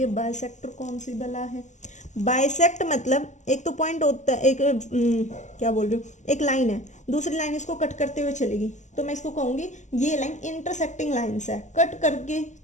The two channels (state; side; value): late; right; 0.34 ms